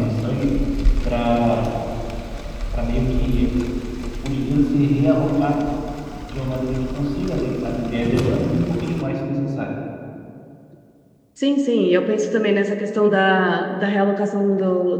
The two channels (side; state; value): both; identical; correlation 1.00